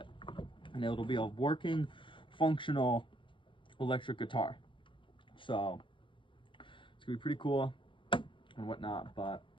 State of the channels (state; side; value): late; right; 0.24 ms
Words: and it'll be a working, functional electric guitar. So it's gonna be pretty cool and whatnot. But